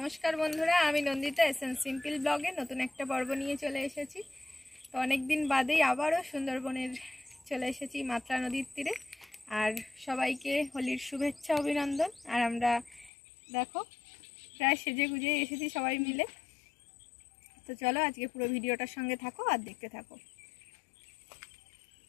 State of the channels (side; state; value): right; drops out; at 13.1 s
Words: নমস্কার বন্ধুরা, আমি নন্দিতা এসএন সিম্পল ব্লগে নতুন একটা পর্ব নিয়ে চলে এসেছি। তো অনেকদিন বাদেই আবারও সুন্দরবনের চলে এসেছি মাতলা নদীর তীরে। আর সবাইকে হোলির শুভেচ্ছা অভিনন্দন। আর আমরা দেখো প্রায় সেজে গুজে এসেছি সবাই মিলে। তো চলো আজকে পুরো ভিডিওটার সঙ্গে থাকো আর দেখতে থাকো।